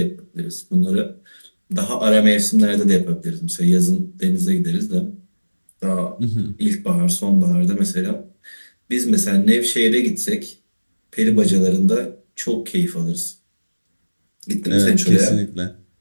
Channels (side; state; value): both; inverted; correlation -1.00